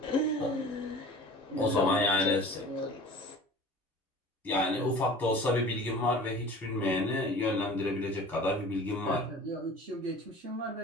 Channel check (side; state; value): both; normal; correlation 0.42